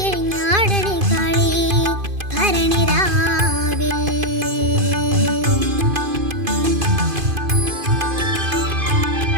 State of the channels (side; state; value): left; late; 2.5 ms